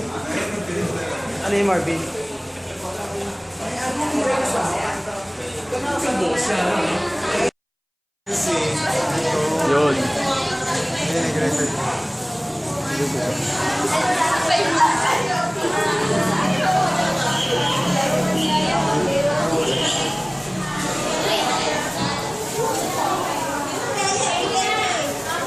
Ano yung Marvin? Yun.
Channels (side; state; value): both; identical; correlation 1.00